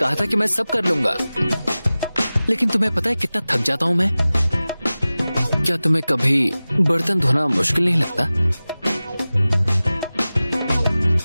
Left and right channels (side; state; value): both; inverted; correlation -0.97